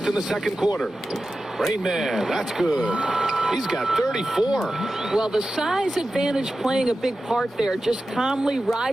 in the second quarter. Rain Man, that's good. He's got 34. Well, the size advantage playing a big part there. Just calmly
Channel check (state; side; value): normal; both; correlation 0.93